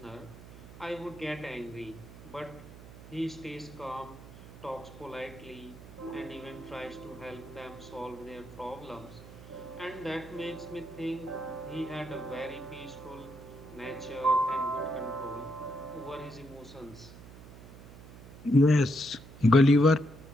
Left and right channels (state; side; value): noise; right; hum, 17 dB below the sound